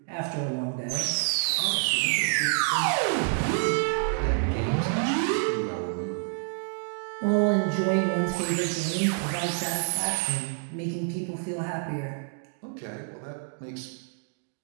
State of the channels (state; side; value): silent; left; 60 dB below the other